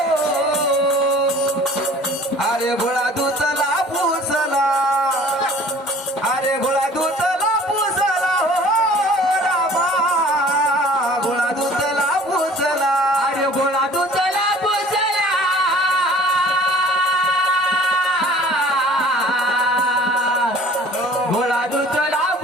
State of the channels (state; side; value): normal; both; correlation 0.49